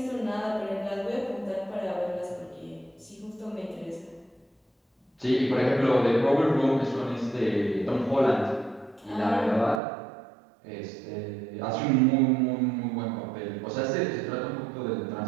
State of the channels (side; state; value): left; drops out; at 9.8 s